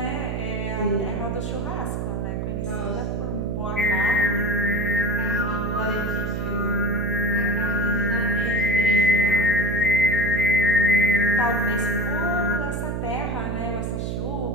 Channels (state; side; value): noise; right; hum, 2 dB below the sound